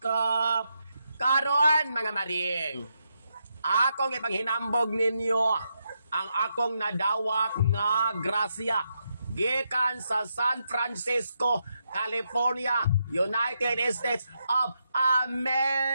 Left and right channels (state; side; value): inverted; both; correlation -0.82